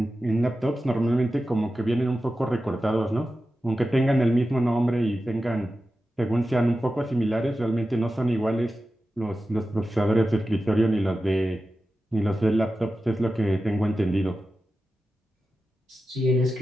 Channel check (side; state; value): both; normal; correlation 0.93